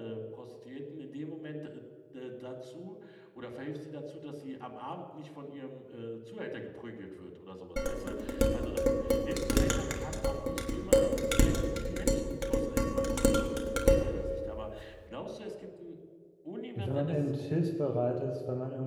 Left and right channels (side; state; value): both; identical; correlation 1.00